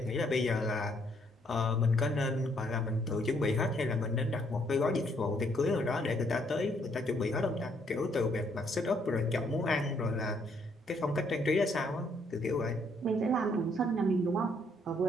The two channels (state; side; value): normal; both; correlation 0.69